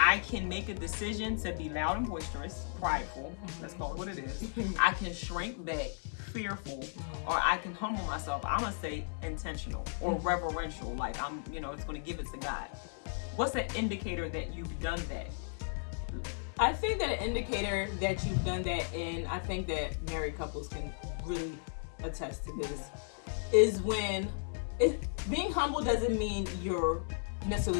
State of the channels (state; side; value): silent; right; 54 dB below the other